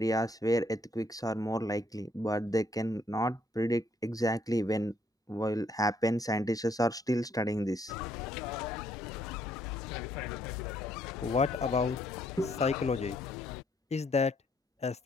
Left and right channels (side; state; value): both; normal; correlation 0.69